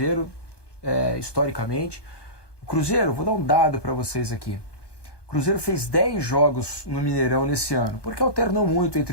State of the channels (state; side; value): late; right; 1.2 ms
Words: historicamente. O Cruzeiro, vou dar um dado para vocês aqui. O Cruzeiro fez 10 jogos no Mineirão nesse ano, porque alternou muito